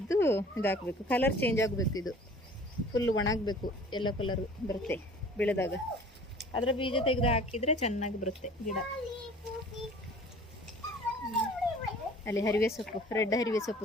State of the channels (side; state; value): both; normal; correlation 0.48